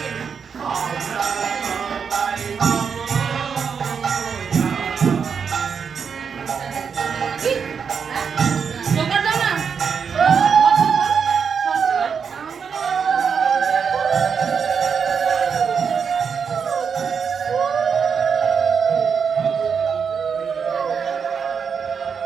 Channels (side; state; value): left; quieter; 6.4 dB